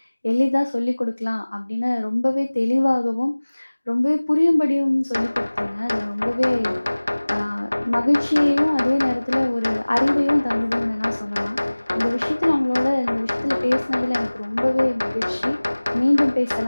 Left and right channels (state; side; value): inverted; both; correlation -1.00